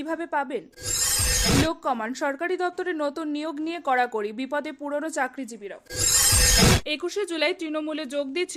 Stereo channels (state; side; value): identical; both; correlation 1.00